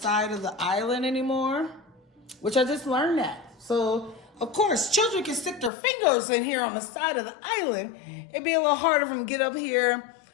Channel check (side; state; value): right; drops out; at 5.7 s